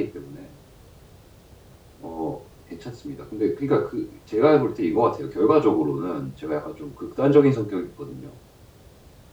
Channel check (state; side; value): identical; both; correlation 1.00